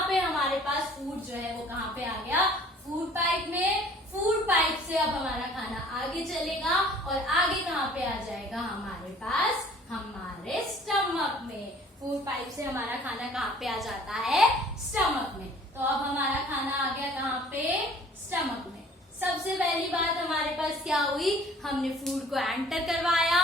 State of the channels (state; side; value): normal; both; correlation 0.53